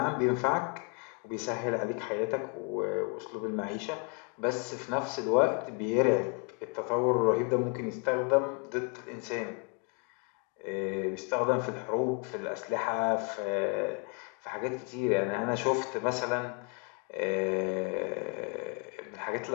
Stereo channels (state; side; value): quieter; right; 37.0 dB